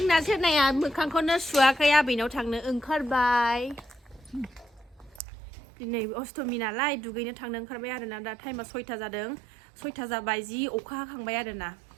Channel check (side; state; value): left; drops out; at 5.2 s